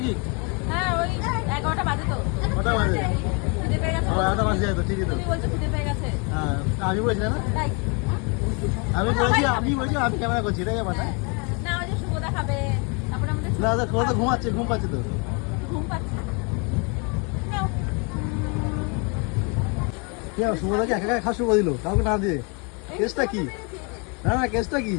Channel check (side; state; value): right; quieter; 33.3 dB